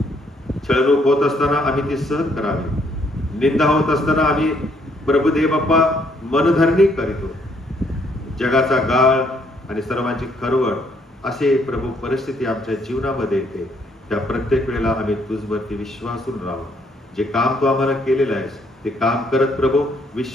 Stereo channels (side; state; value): both; normal; correlation 0.69